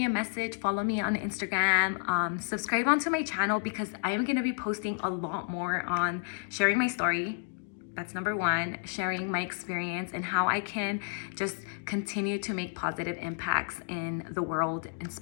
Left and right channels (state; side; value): silent; right; 57 dB below the other